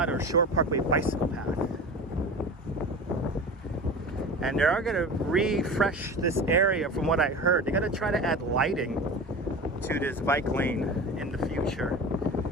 or Shore Parkway bicycle path, and they are going to refresh this area. From what I heard, they're going to try to add lighting to this bike lane in the future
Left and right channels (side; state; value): both; normal; correlation 0.32